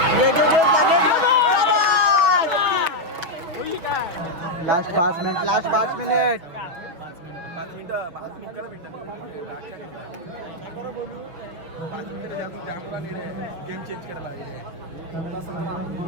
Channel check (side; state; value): left; late; 6.0 ms